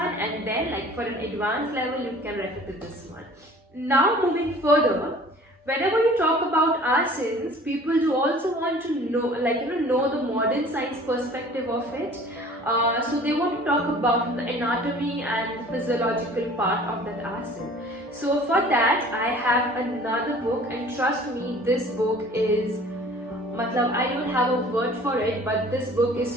and then for an advanced level you can refer to this one. Now moving further, whenever you talk about asanas, people do also want to know know the modern science perspective of it. So they want to talk about the anatomy and the physiological part of that asana. So for that I have another book, and trust me, this book is I don't have a word for it, but this book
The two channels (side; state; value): both; normal; correlation 0.48